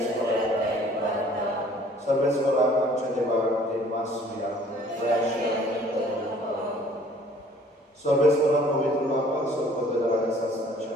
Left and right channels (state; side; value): normal; both; correlation 0.55